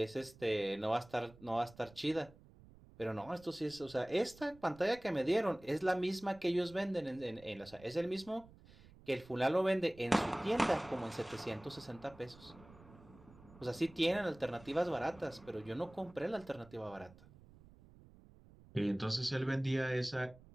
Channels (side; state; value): right; noise; rumble, 22 dB below the sound